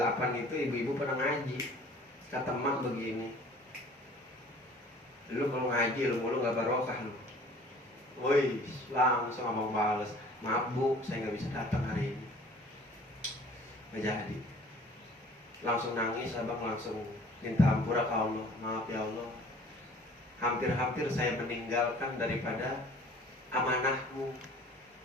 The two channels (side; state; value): both; normal; correlation 0.50